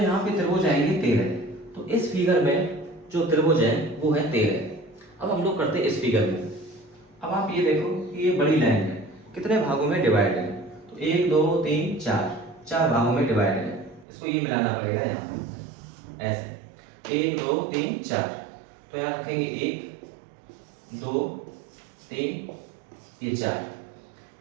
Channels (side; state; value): left; drops out; at 14.1 s